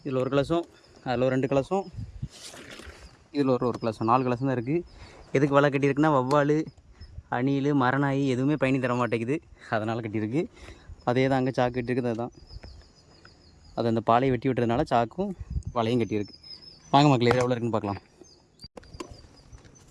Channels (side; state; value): both; identical; correlation 1.00